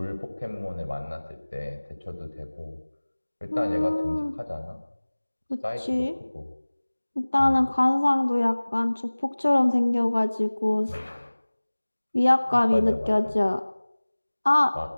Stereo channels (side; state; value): both; inverted; correlation -1.00